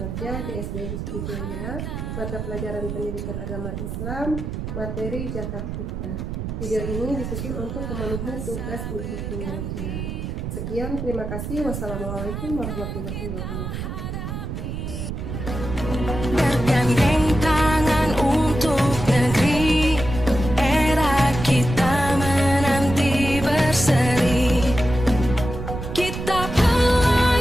di SD Hizbul Jaya, mata pelajaran pendidikan agama Islam, materi Zakat Fitrah. Video ini disusun untuk memenuhi tugas uji kinerja. Sekian, terima kasih. Wassalamualaikum warahmatullahi wabarakatuh. Bergandeng tangan untuk negeri, era kita menanti berseri. Kita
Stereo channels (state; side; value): noise; right; rumble, 6 dB below the sound